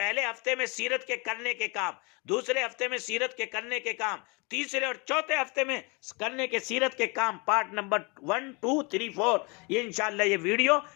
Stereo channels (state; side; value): quieter; right; 29.9 dB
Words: ہفتے میں سیرت کے کرنے کے کام، دوسرے ہفتے میں سیرت کے کرنے کے کام، تیسرے اور چوتھے ہفتے میں کرنے کے سیرت کے کام، پارٹ نمبر 1 2 3 4، یہ انشاءاللہ یہ ویڈیو